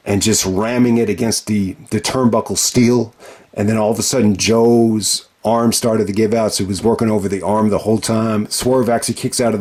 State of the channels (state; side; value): identical; both; correlation 1.00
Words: and just ramming it against the turnbuckle steel. And then all of a sudden Joe's arm started to give out, so he was working over the arm the whole time. Swerve actually kicks out of